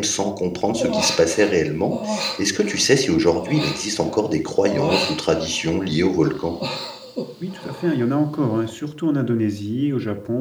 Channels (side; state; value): both; identical; correlation 1.00